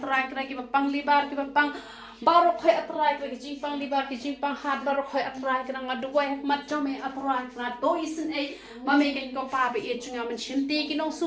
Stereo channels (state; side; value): identical; both; correlation 1.00